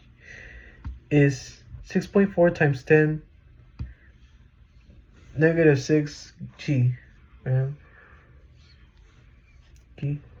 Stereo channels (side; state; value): both; identical; correlation 1.00